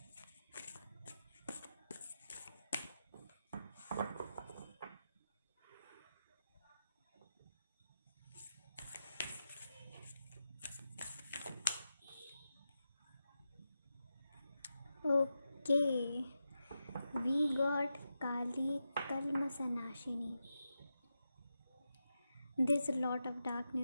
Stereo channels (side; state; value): both; inverted; correlation -0.89